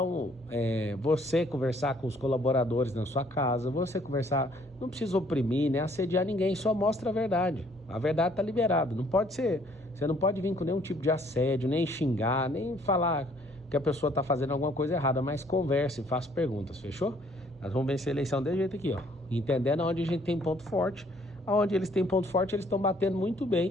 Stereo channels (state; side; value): normal; both; correlation 0.62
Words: você conversar com os colaboradores na sua casa, você conversar, não precisa oprimir, nem assediar ninguém, só mostra a verdade. A verdade está liberada, não pode ser, você não pode vir com nenhum tipo de assédio, nem xingar, nem falar que a pessoa está fazendo alguma coisa errada, mas converse, faça perguntas, fechou? Nós vamos vencer a eleição desse jeito aqui, ó, entendendo onde a gente tem ponto forte, onde eles têm ponto forte, eles estão batendo muito